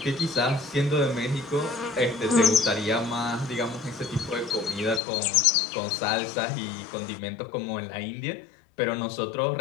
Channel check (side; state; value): right; drops out; at 5.0 s